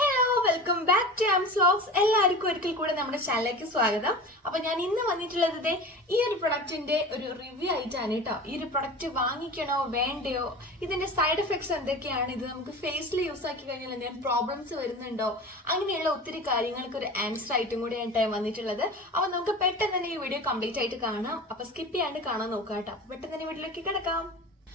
വെൽക്കം ബാക്ക് ടു ആംസ് വ്ലോഗ്സ്. എല്ലാവർക്കും ഒരിക്കൽ കൂടെ നമ്മുടെ ചാനലിലേക്ക് സ്വാഗതം. അപ്പൊ ഞാൻ ഇന്ന് വന്നിട്ടുള്ളത് ഈ ഒരു പ്രൊഡക്റ്റിന്റെ ഒരു റിവ്യൂ ആയിട്ടാണ് കേട്ടോ. ഈ ഒരു പ്രൊഡക്റ്റ് വാങ്ങിക്കണോ വേണ്ടയോ, ഇതിന്റെ സൈഡ് എഫക്ട്സ് എന്തൊക്കെയാണ്, ഇത് നമുക്ക് ഫേസിൽ യൂസ് ആക്കി കഴിഞ്ഞാൽ എന്തെങ്കിലും പ്രോബ്ലംസ് വരുന്നുണ്ടോ, അങ്ങനെയുള്ള ഒത്തിരി കാര്യങ്ങൾക്ക് ഒരു ആൻസർ ആയിട്ടും കൂടിയാണ് വന്നിട്ടുള്ളത്. അപ്പൊ നമുക്ക് പെട്ടെന്ന് തന്നെ ഈ വീഡിയോ കംപ്ലീറ്റ് ആയിട്ട് കാണാം. അപ്പൊ സ്കിപ്പ് ചെയ്യാണ്ട് കാണാൻ നോക്കാം കേട്ടോ. പെട്ടെന്ന് തന്നെ വീഡിയോയിലേക്ക് കിടക്കാം.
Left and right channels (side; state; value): both; normal; correlation 0.34